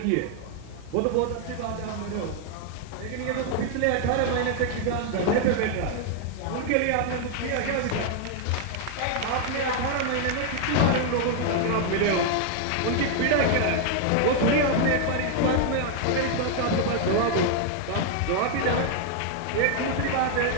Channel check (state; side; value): different; both; correlation 0.00